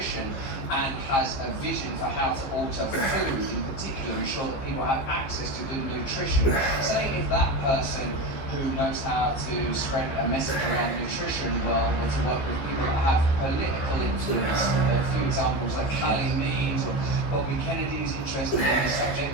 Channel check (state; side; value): late; right; 15 ms